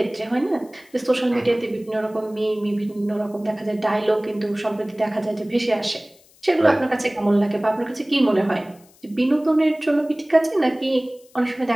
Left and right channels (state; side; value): noise; left; hiss, 29 dB below the sound